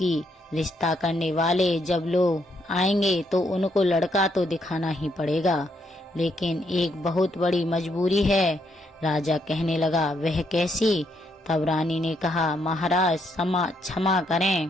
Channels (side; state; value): both; normal; correlation 0.75